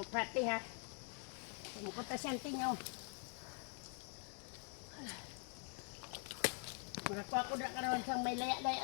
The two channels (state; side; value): quieter; right; 39.8 dB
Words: pati ha. Pumupunta siyang tingaw. Makakuha ko na karoon siyang may laya-laya